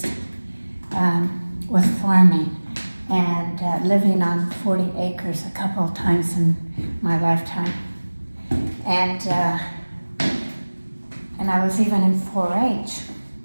with farming and living on 40 acres a couple of times in my lifetime. And I was even in 4-H.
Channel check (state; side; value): inverted; both; correlation -1.00